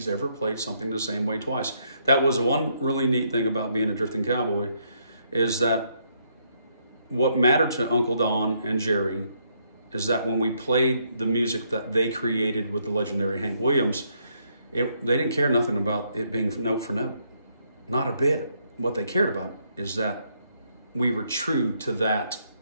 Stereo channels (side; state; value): both; inverted; correlation -0.73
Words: ever played something the same way twice. That was one really neat thing about being a drifting cowboy, is that what mattered to Uncle Don and Jerry is that when we played the music that they created with the legendary Hank Williams, they didn't care nothing about it being note for note. Not a bit. What they cared about is that we were true to that